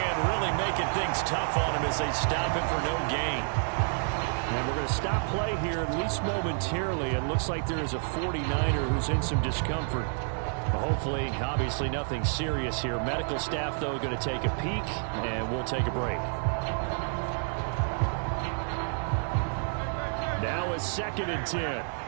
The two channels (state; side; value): silent; left; 58 dB below the other